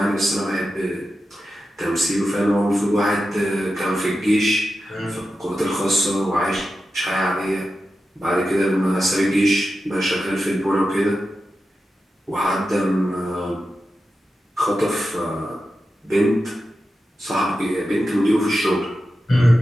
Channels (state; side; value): normal; both; correlation 0.91